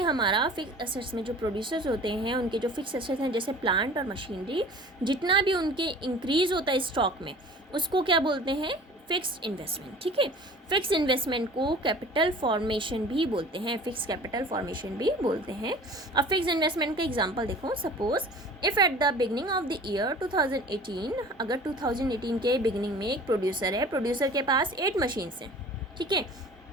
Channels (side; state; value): both; normal; correlation 0.44